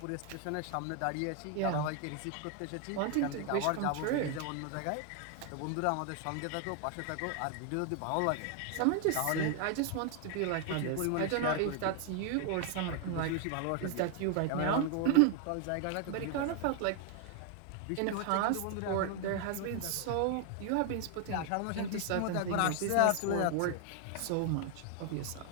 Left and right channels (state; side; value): different; both; correlation 0.00